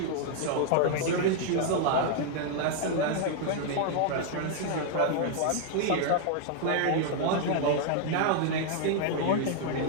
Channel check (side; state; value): both; different; correlation 0.00